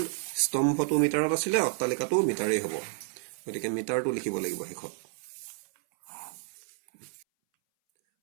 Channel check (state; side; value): silent; left; 58 dB below the other